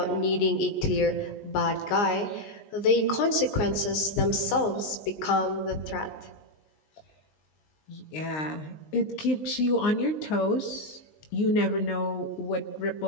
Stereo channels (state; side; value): late; right; 19 ms